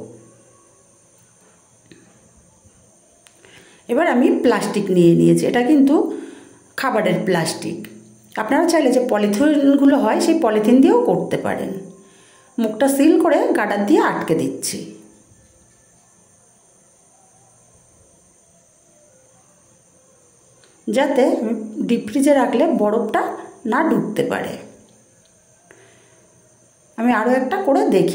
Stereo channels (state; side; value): identical; both; correlation 1.00